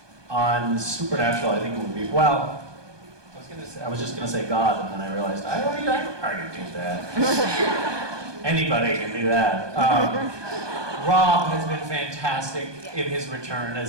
On Supernatural, I think it would be, I was just gonna say God, and then I realized I already do that. Anybody can do that. Rob has been fantastic in his return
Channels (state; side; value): late; left; 1.2 ms